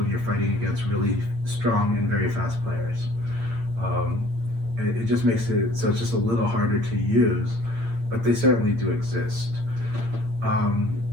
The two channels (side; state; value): left; late; 8.7 ms